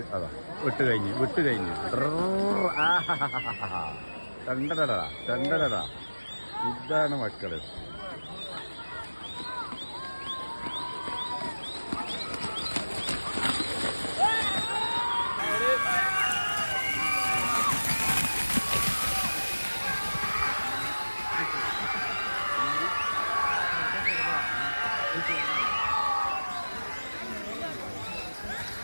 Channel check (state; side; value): inverted; both; correlation -1.00